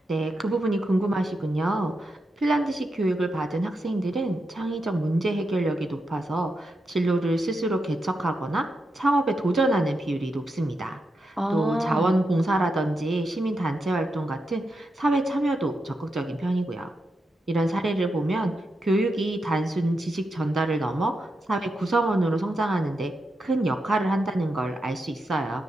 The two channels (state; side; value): normal; both; correlation 0.86